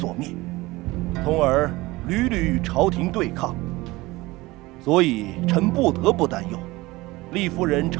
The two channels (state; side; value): quieter; left; 20.6 dB